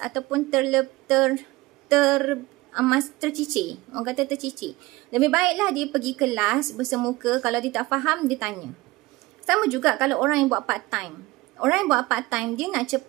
tercicir. Orang kata tercicir. Lebih baiklah dia pergi kelas bersemuka. Kalau dia tak faham, dia tanya. Sama juga kalau orang yang buat part time. Orang yang buat part time, dia nak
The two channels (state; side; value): quieter; left; 20.0 dB